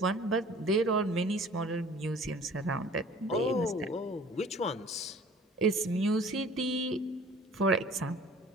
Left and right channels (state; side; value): normal; both; correlation 0.48